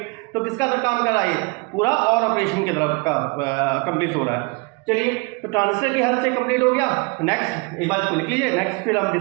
तो किसका काम कर रहा है, पूरा और ऑपरेशन की तरफ का कंप्लीट हो रहा है। चलिए तो ट्रांजिस्टर की हेल्प से कंप्लीट हो गया। नेक्स्ट एक बार इसको लिख लीजिए, नेक्स्ट फिर हम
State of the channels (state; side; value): quieter; left; 29.1 dB